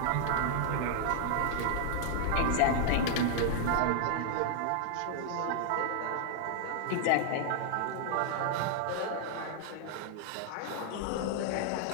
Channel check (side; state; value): both; different; correlation 0.00